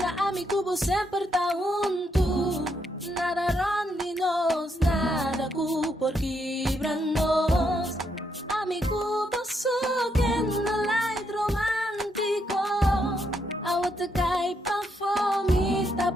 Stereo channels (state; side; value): normal; both; correlation 0.77